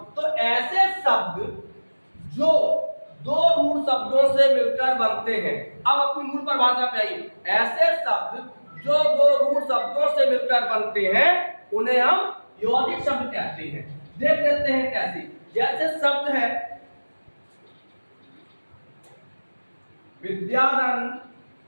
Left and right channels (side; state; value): both; inverted; correlation -1.00